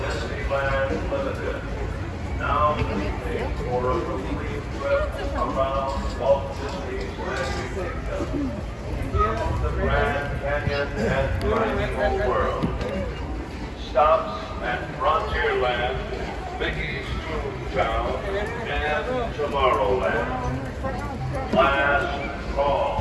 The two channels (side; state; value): both; identical; correlation 1.00